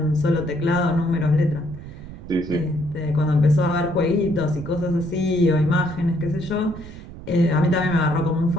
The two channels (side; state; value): right; noise; rumble, 14 dB below the sound